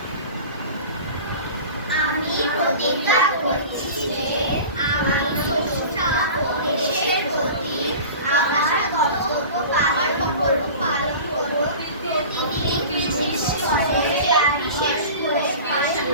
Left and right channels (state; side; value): inverted; both; correlation -0.37